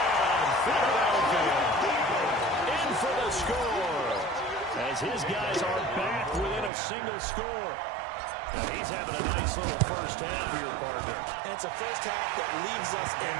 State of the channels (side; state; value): left; drops out; at 6.7 s